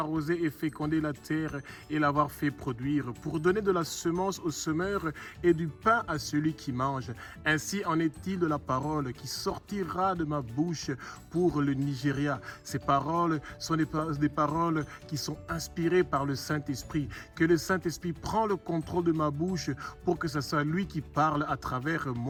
et fécondé la terre et l'avoir fait produire, pour donner de la semence au semeur et du pain à celui qui mange. Ainsi en est-il de la parole qui sortira de ma bouche pour le Nigeria. Ces paroles sont des paroles qui sont inspirées par le Saint-Esprit, que le Saint-Esprit prend le contrôle de ma bouche pour que ce soit lui qui parle à travers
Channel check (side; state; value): both; identical; correlation 1.00